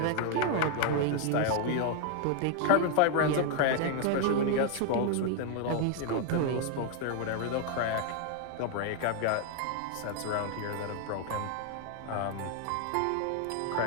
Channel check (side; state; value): both; different; correlation 0.00